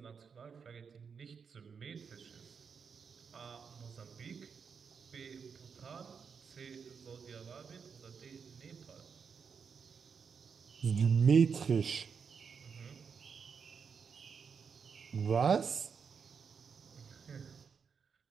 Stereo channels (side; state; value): left; quieter; 6.2 dB